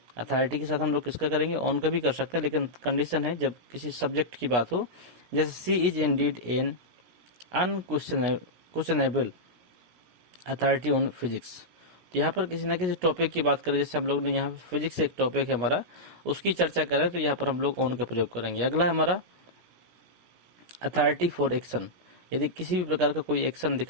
अथॉरिटी के साथ हम लोग किसका करेंगे, ऑन का भी कर सकते हैं, लेकिन कंडीशन है जब किसी सब्जेक्ट की बात हो, जैसे she is indeed an unquestionable authority on physics. तो यहाँ पर किसी न किसी टॉपिक की बात करें, जैसे हम लोग ने यहाँ फिजिक्स एक टॉपिक है हमारा, उसकी चर्चा करें तो यहाँ पर हम लोग ऑन का प्रयोग करेंगे। अगला है हमारा अथॉरिटी फॉर एक्शन। यदि किसी भी प्रकार का कोई एक्शन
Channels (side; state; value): left; late; 17 ms